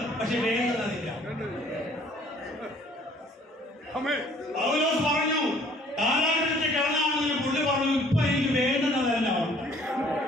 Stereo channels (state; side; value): normal; both; correlation 0.57